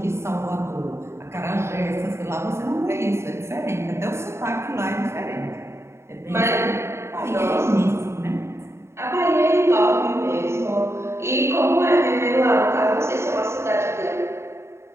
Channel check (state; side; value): late; left; 0.13 ms